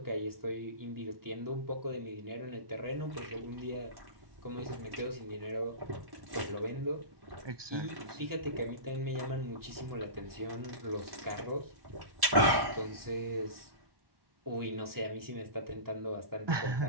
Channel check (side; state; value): left; late; 1.1 ms